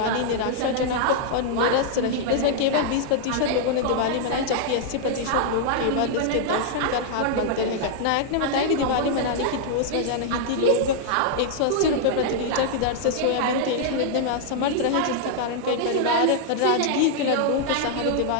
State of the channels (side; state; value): both; different; correlation -0.01